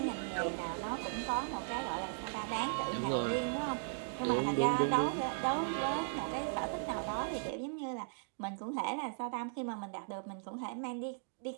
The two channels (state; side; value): silent; left; digital silence